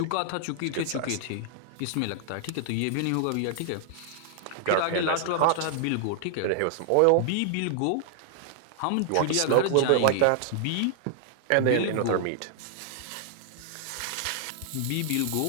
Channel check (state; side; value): different; both; correlation 0.00